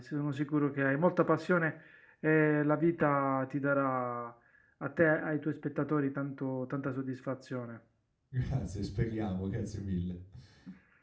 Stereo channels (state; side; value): identical; both; correlation 1.00